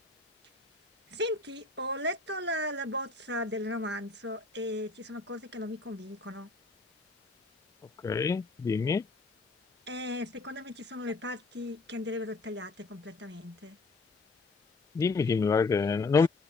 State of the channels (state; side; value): quieter; right; 3.6 dB